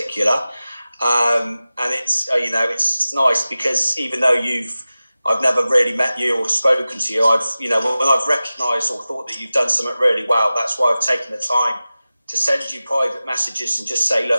And it's it's nice because even though I've never really met you or spoken to you. When I've recognised or thought that you've done something really well, that's why I've taken the time to send you private messages and just say,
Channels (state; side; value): inverted; both; correlation -0.96